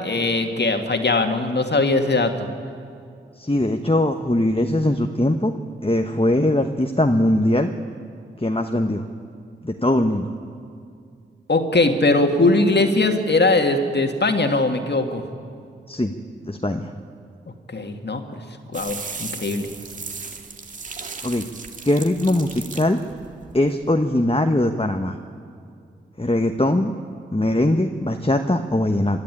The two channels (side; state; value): both; normal; correlation 0.59